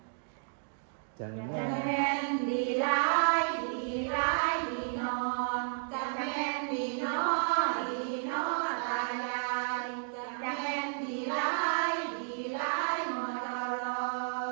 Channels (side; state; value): left; silent; digital silence